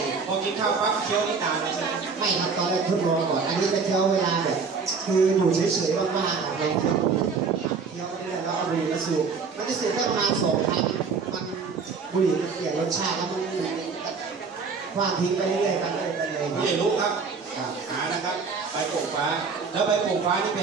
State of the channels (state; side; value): quieter; left; 5.1 dB